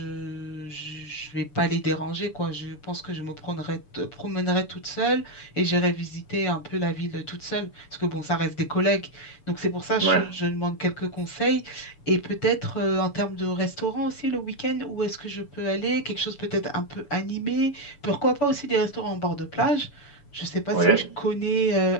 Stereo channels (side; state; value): right; late; 6.9 ms